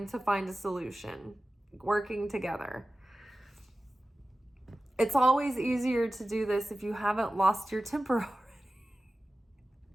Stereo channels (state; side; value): normal; both; correlation 0.95